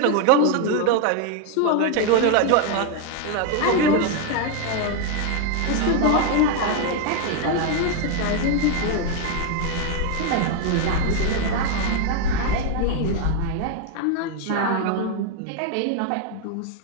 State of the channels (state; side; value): different; both; correlation 0.01